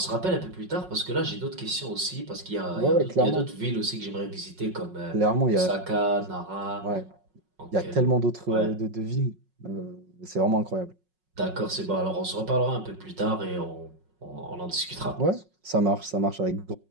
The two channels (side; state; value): left; late; 5.4 ms